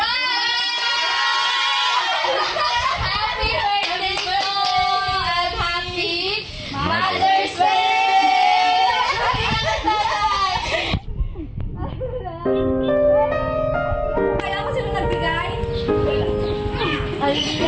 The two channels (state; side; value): identical; both; correlation 1.00